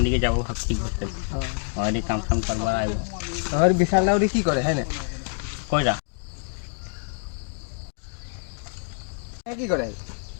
দিকে যাবো ভাবছি ঘুরতে ওই কাম কাম করবার আইব আর বিশাল লাউরি কি করে হ্যাঁ না কইরা কি করে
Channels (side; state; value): right; silent; 57 dB below the other